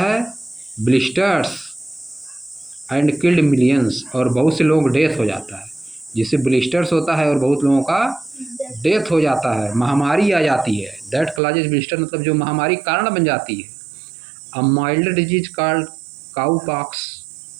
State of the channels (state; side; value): drops out; left; at 11.4 s